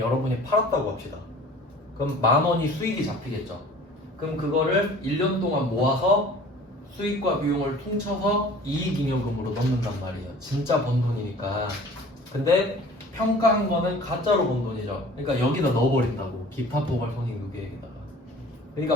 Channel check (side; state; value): both; normal; correlation 0.47